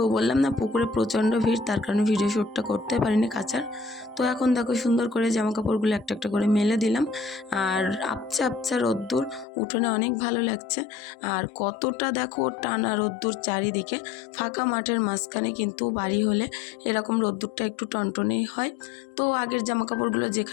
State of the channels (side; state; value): right; drops out; at 9.5 s